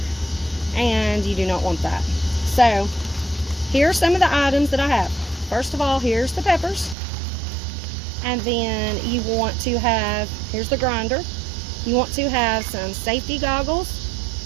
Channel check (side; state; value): left; drops out; at 7.0 s